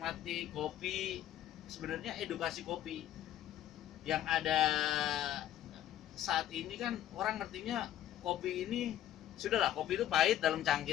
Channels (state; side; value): quieter; right; 12.0 dB